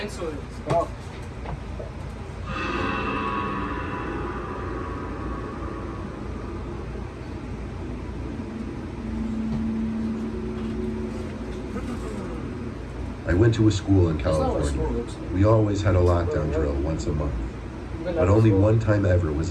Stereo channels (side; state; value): both; identical; correlation 1.00